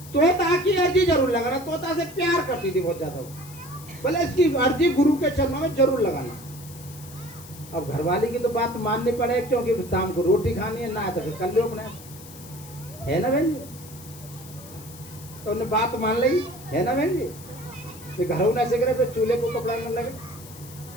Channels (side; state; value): left; noise; hiss, 18 dB below the sound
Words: तोता की अर्जी जरूर लगाना। तोता से प्यार करती थी बहुत ज्यादा, बोले इसकी अर्जी गुरु के चरणों में जरूर लगाना। अब घरवाली की तो बात माननी पड़े, क्योंकि शाम को रोटी खानी है, ना तो फिर कर लो अपने, है ना बहन जी। तो उन्हें बात मान ली, है ना बहन जी। फिर घरों न से फिर चूल्हे को कपड़ा न लगे।